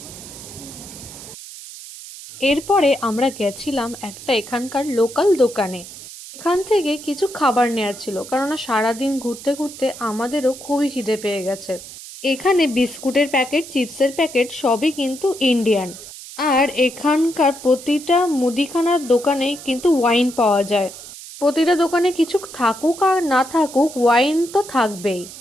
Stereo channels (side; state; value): right; noise; hiss, 14 dB below the sound